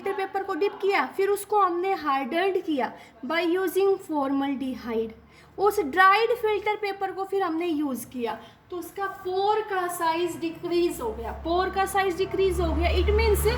पेपर को डिप किया, फिर उसको हमने हार्डन्ड किया बाय यूजिंग फॉर्मल्डिहाइड। उस ड्राइड फिल्टर पेपर को फिर हमने यूज़ किया तो उसका पोर का साइज डिक्रीज हो गया। पोर का साइज डिक्रीज हो गया, इट मीन्स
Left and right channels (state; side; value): identical; both; correlation 1.00